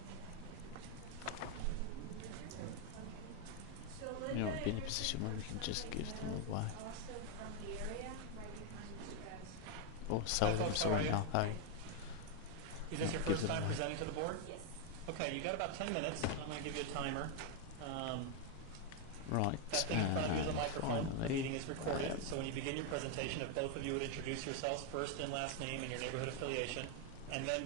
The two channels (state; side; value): different; both; correlation 0.01